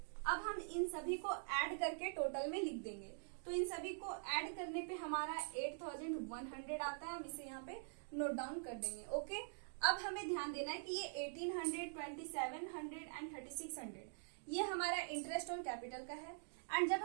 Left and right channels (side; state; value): left; silent; digital silence